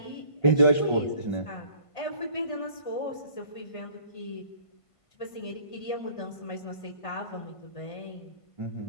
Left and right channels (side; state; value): right; late; 1.5 ms